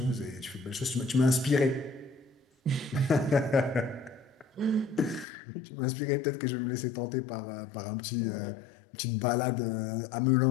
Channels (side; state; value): right; drops out; at 5.2 s